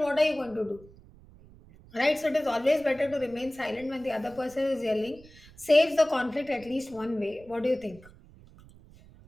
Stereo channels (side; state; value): right; noise; rumble, 23 dB below the sound